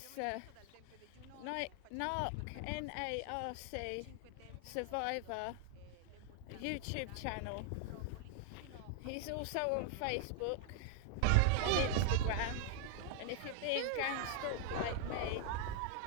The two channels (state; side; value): different; both; correlation 0.00